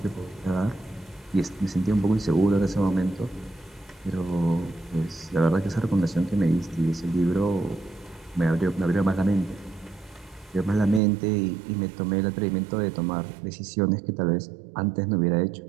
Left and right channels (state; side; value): drops out; left; at 11.0 s